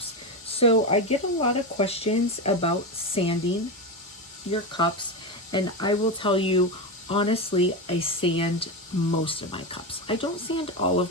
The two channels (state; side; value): normal; both; correlation 0.15